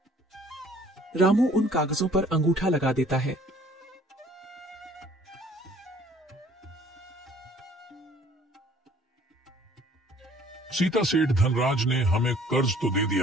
रामू उन कागजों पर अंगूठा लगा देता है। सीता सेठ धनराज ने हमें कर्ज तो दे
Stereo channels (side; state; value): both; normal; correlation 0.56